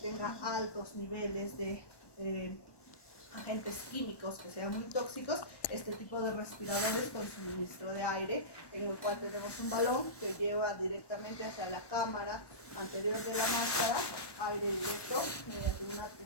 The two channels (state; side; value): late; right; 1.1 ms